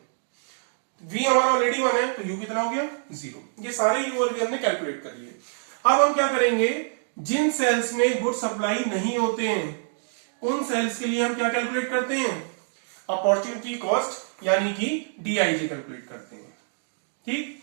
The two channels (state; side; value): silent; left; digital silence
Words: V हमारा ऑलरेडी 1 है तो U कितना हो गया 0। ये सारे U और V हमने कैलकुलेट कर लिए। अब हम क्या करेंगे? जिन सेल्स में गुड सप्लाई नहीं होते हैं उन सेल्स के लिए हम क्या कैलकुलेट करते हैं? अपॉर्चुनिटी कॉस्ट यानी कि DIJ कैलकुलेट करते हैं। ठीक।